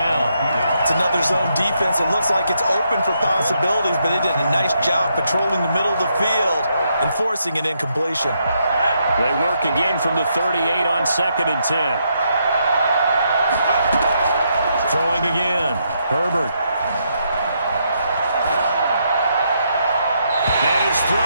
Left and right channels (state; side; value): inverted; both; correlation -0.78